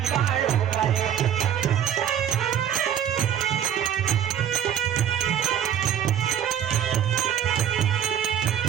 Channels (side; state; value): left; quieter; 9.8 dB